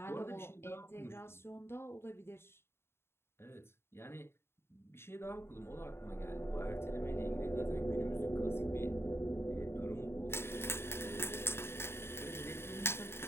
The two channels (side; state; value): right; late; 0.12 ms